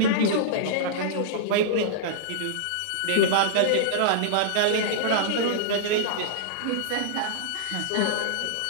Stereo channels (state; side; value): different; both; correlation -0.02